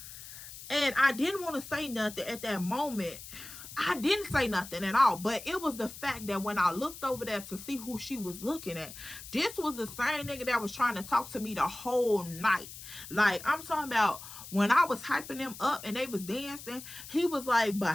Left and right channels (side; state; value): left; noise; hiss, 13 dB below the sound